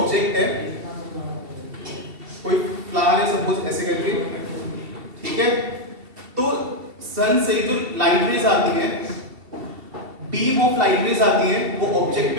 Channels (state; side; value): late; left; 2.7 ms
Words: है, कोई फ्लावर है सपोज ऐसे करके, ठीक है, तो सन से जो लाइट रेज आती हैं, बीम ऑफ लाइट रेज आती हैं, वो ऑब्जेक्ट